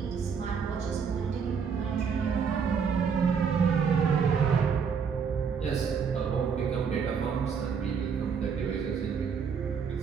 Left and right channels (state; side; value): quieter; left; 6.4 dB